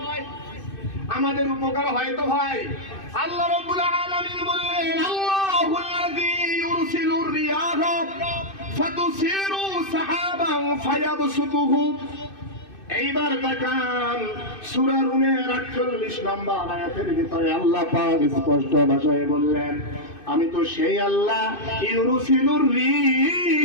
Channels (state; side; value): late; right; 2.6 ms